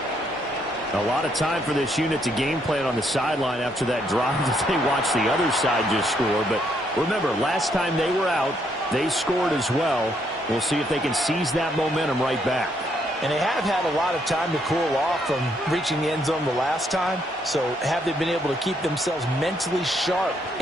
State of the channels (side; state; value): both; normal; correlation 0.73